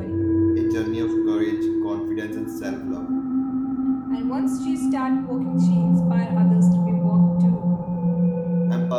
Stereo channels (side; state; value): both; identical; correlation 1.00